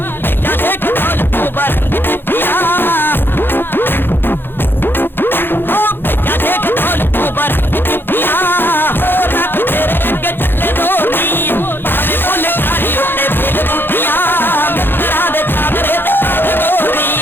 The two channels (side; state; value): right; late; 0.10 ms